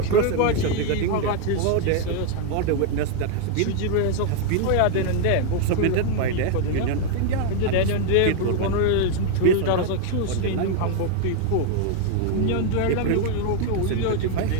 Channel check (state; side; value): different; both; correlation 0.00